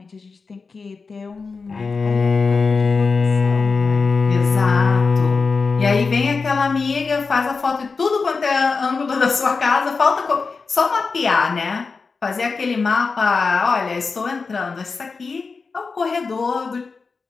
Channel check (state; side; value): quieter; right; 4.6 dB